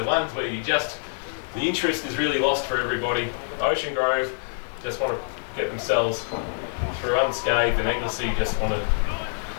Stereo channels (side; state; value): right; silent; digital silence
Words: ones where the interest is really lost for everybody. Ocean Grove just want to get themselves through unscathed, and Anglesea just want to